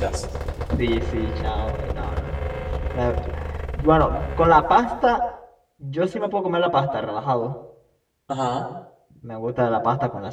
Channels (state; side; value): identical; both; correlation 1.00